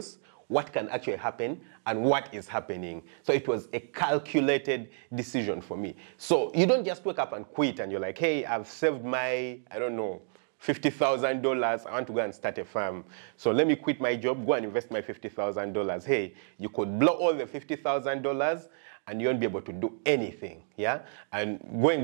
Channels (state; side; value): silent; left; digital silence